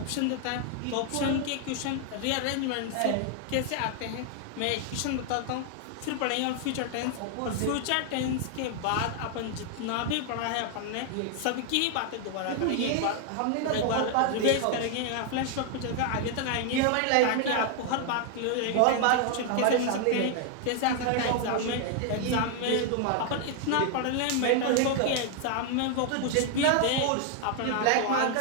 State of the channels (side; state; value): both; different; correlation 0.00